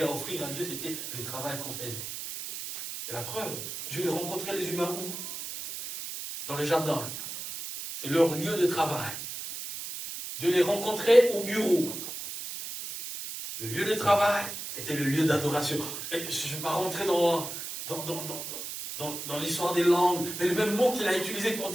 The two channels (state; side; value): noise; right; hiss, 7 dB below the sound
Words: à offrir à Dieu, c'était le travail qu'on faisait. Et la preuve, Dieu il rencontrait les humains où? Dans les jardins. C'est leur lieu de travail. Dieu les rencontrait au bureau. Le lieu de travail était le lieu d'adoration. Et je ne vais pas rentrer dans l'histoire des langues, mais le même mot qu'il a utilisé pour